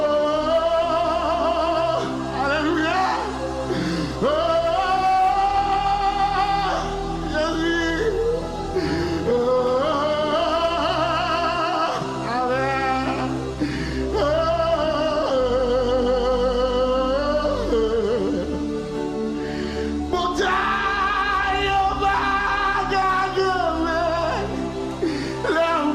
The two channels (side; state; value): both; identical; correlation 1.00